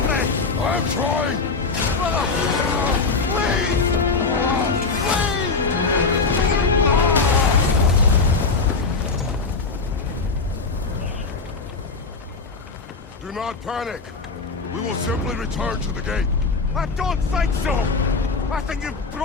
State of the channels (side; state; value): right; quieter; 4.3 dB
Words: me! I'm trying! Brother! Please! Please! Do not panic. We will simply return to the gate. I don't think so! I think you've